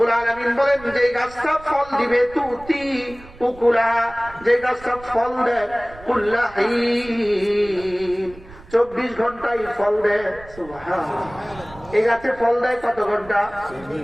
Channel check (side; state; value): right; noise; rumble, 20 dB below the sound